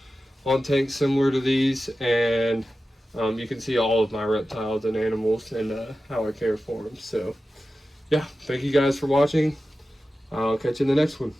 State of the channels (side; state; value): both; normal; correlation 0.94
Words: on tanks similar to these, and you can see all of my reptiles and animals and how I care for them. So yeah, thank you guys for watching. I'll catch you in the next one.